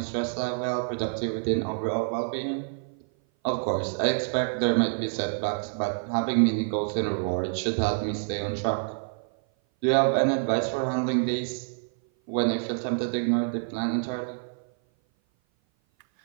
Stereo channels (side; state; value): left; silent; 57 dB below the other